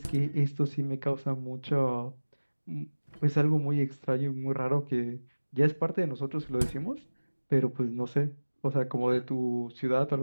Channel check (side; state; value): both; inverted; correlation -1.00